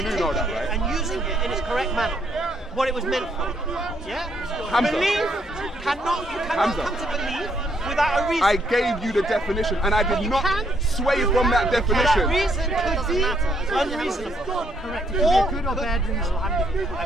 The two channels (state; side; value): normal; both; correlation 0.71